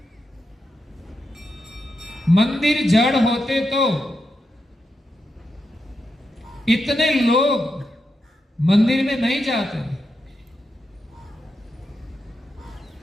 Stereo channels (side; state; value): both; normal; correlation 0.86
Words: मंदिर जड़ होते तो इतने लोग मंदिर में नहीं जाते,